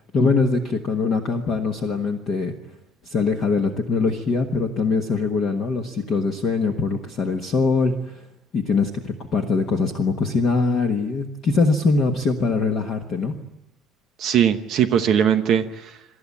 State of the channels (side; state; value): both; normal; correlation 0.62